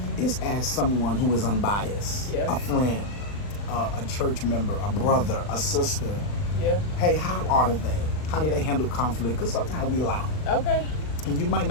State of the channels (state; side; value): late; right; 39 ms